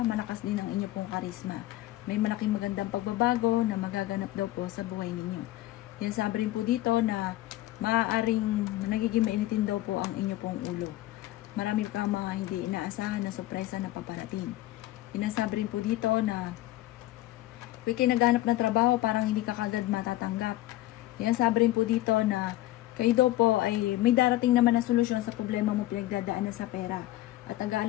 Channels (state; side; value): quieter; right; 16.0 dB